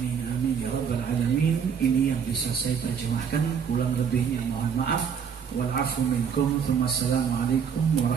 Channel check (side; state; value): left; quieter; 7.1 dB